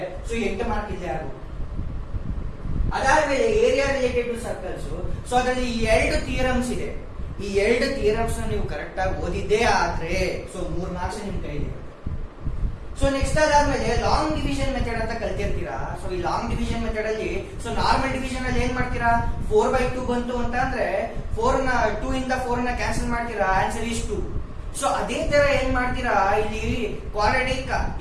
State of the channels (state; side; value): identical; both; correlation 1.00